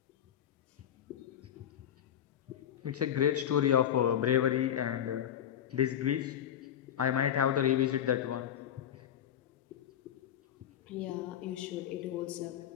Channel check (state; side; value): quieter; right; 10.1 dB